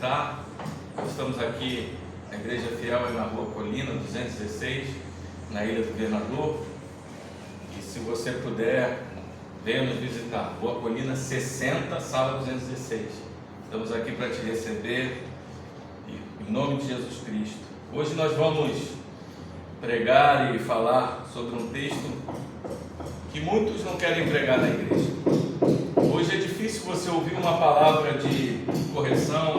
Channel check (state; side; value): identical; both; correlation 1.00